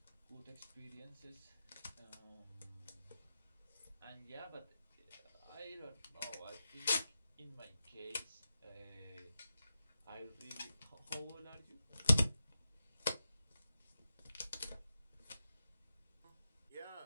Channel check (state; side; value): inverted; both; correlation -0.90